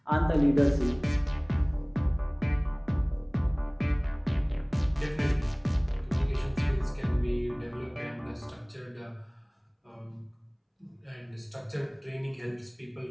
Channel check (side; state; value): both; identical; correlation 1.00